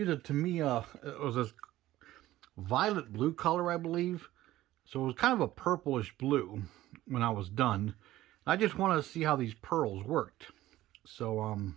a Tamiya, it was this violet blue color, I believe. So it was kind of a purplish blue when I was done. I just wanted to see how these pearls worked. So I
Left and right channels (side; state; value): left; quieter; 15.3 dB